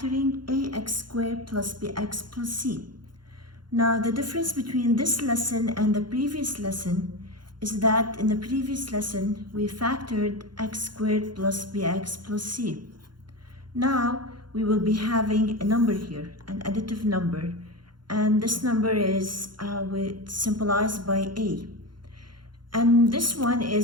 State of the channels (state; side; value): late; left; 0.71 ms